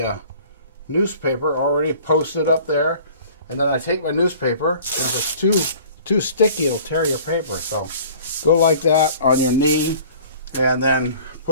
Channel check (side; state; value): both; inverted; correlation -0.49